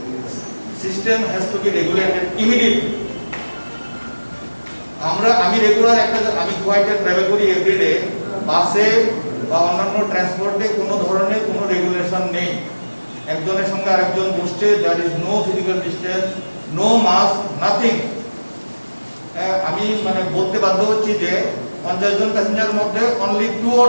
system has to be regulated immediately. আমি regular আমি গুয়াহাটিতে travel করি everyday, বাসে বা অন্যান্য ট্রান্সপোর্টে কোনো ধরনের কোনো regulation নেই। একজনের সঙ্গে আরেকজন বসছে, there is no physical distance, no mask, nothing. আমি মানে বলতে বাধ্য হচ্ছি যে 50 জন প্যাসেঞ্জারের মধ্যে only 2 or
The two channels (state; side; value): inverted; both; correlation -1.00